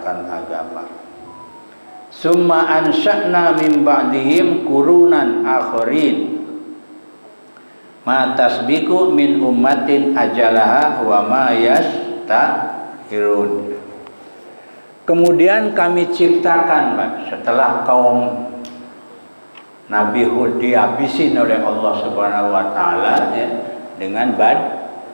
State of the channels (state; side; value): inverted; both; correlation -1.00